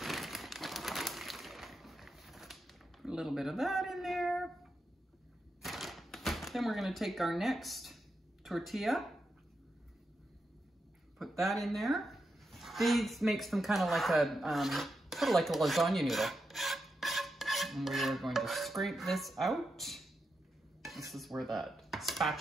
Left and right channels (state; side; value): normal; both; correlation 0.86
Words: A little bit of that in there. Then we're gonna take our next tortilla, put that in there. These makes them kind of like a, sort of like a lasagna noodle. And we're going to scrape this out. This is where that